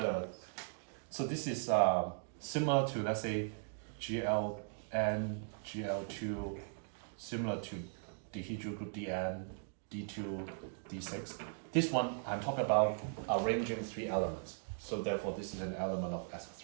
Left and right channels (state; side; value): silent; left; digital silence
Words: is similar to, let's say, GLN, GL2, similar to dihedral group DN, D2, D6. This one, I'm talking about arranging 3 elements. So therefore, this is an element of